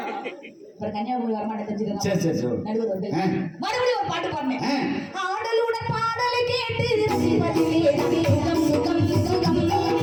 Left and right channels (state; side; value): identical; both; correlation 1.00